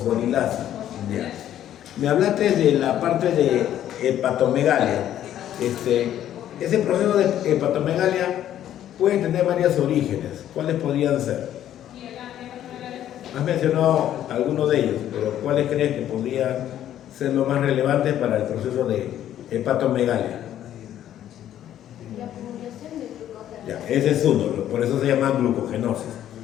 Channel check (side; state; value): right; quieter; 11.4 dB